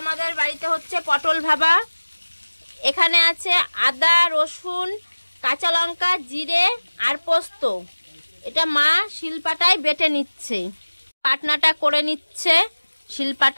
আমাদের বাড়িতে হচ্ছে, পটল ভাবা। এখানে আছে আদা, রসুন, কাঁচা লঙ্কা, জিরে আর পোস্ত। এটা মা শিলপাটায় বেটে নিচ্ছে, বাটনাটা করে নিচ্ছে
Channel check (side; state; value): both; inverted; correlation -1.00